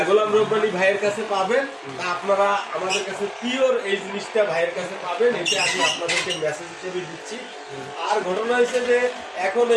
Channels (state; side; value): identical; both; correlation 1.00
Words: গোলাম রব্বানী ভাইয়ের কাছে পাবেন। তা আপনারা আমাদের কাছে পিওর এই জিনিসটা ভাইয়ের কাছে পাবেন, এটা আমি আপনাদেরকে মেসেজ হিসেবে দিচ্ছি। আর ঘটনা হয়েছে যে এখন